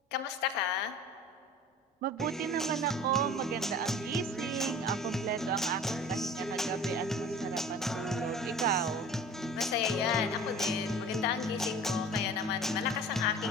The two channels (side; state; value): both; normal; correlation 0.42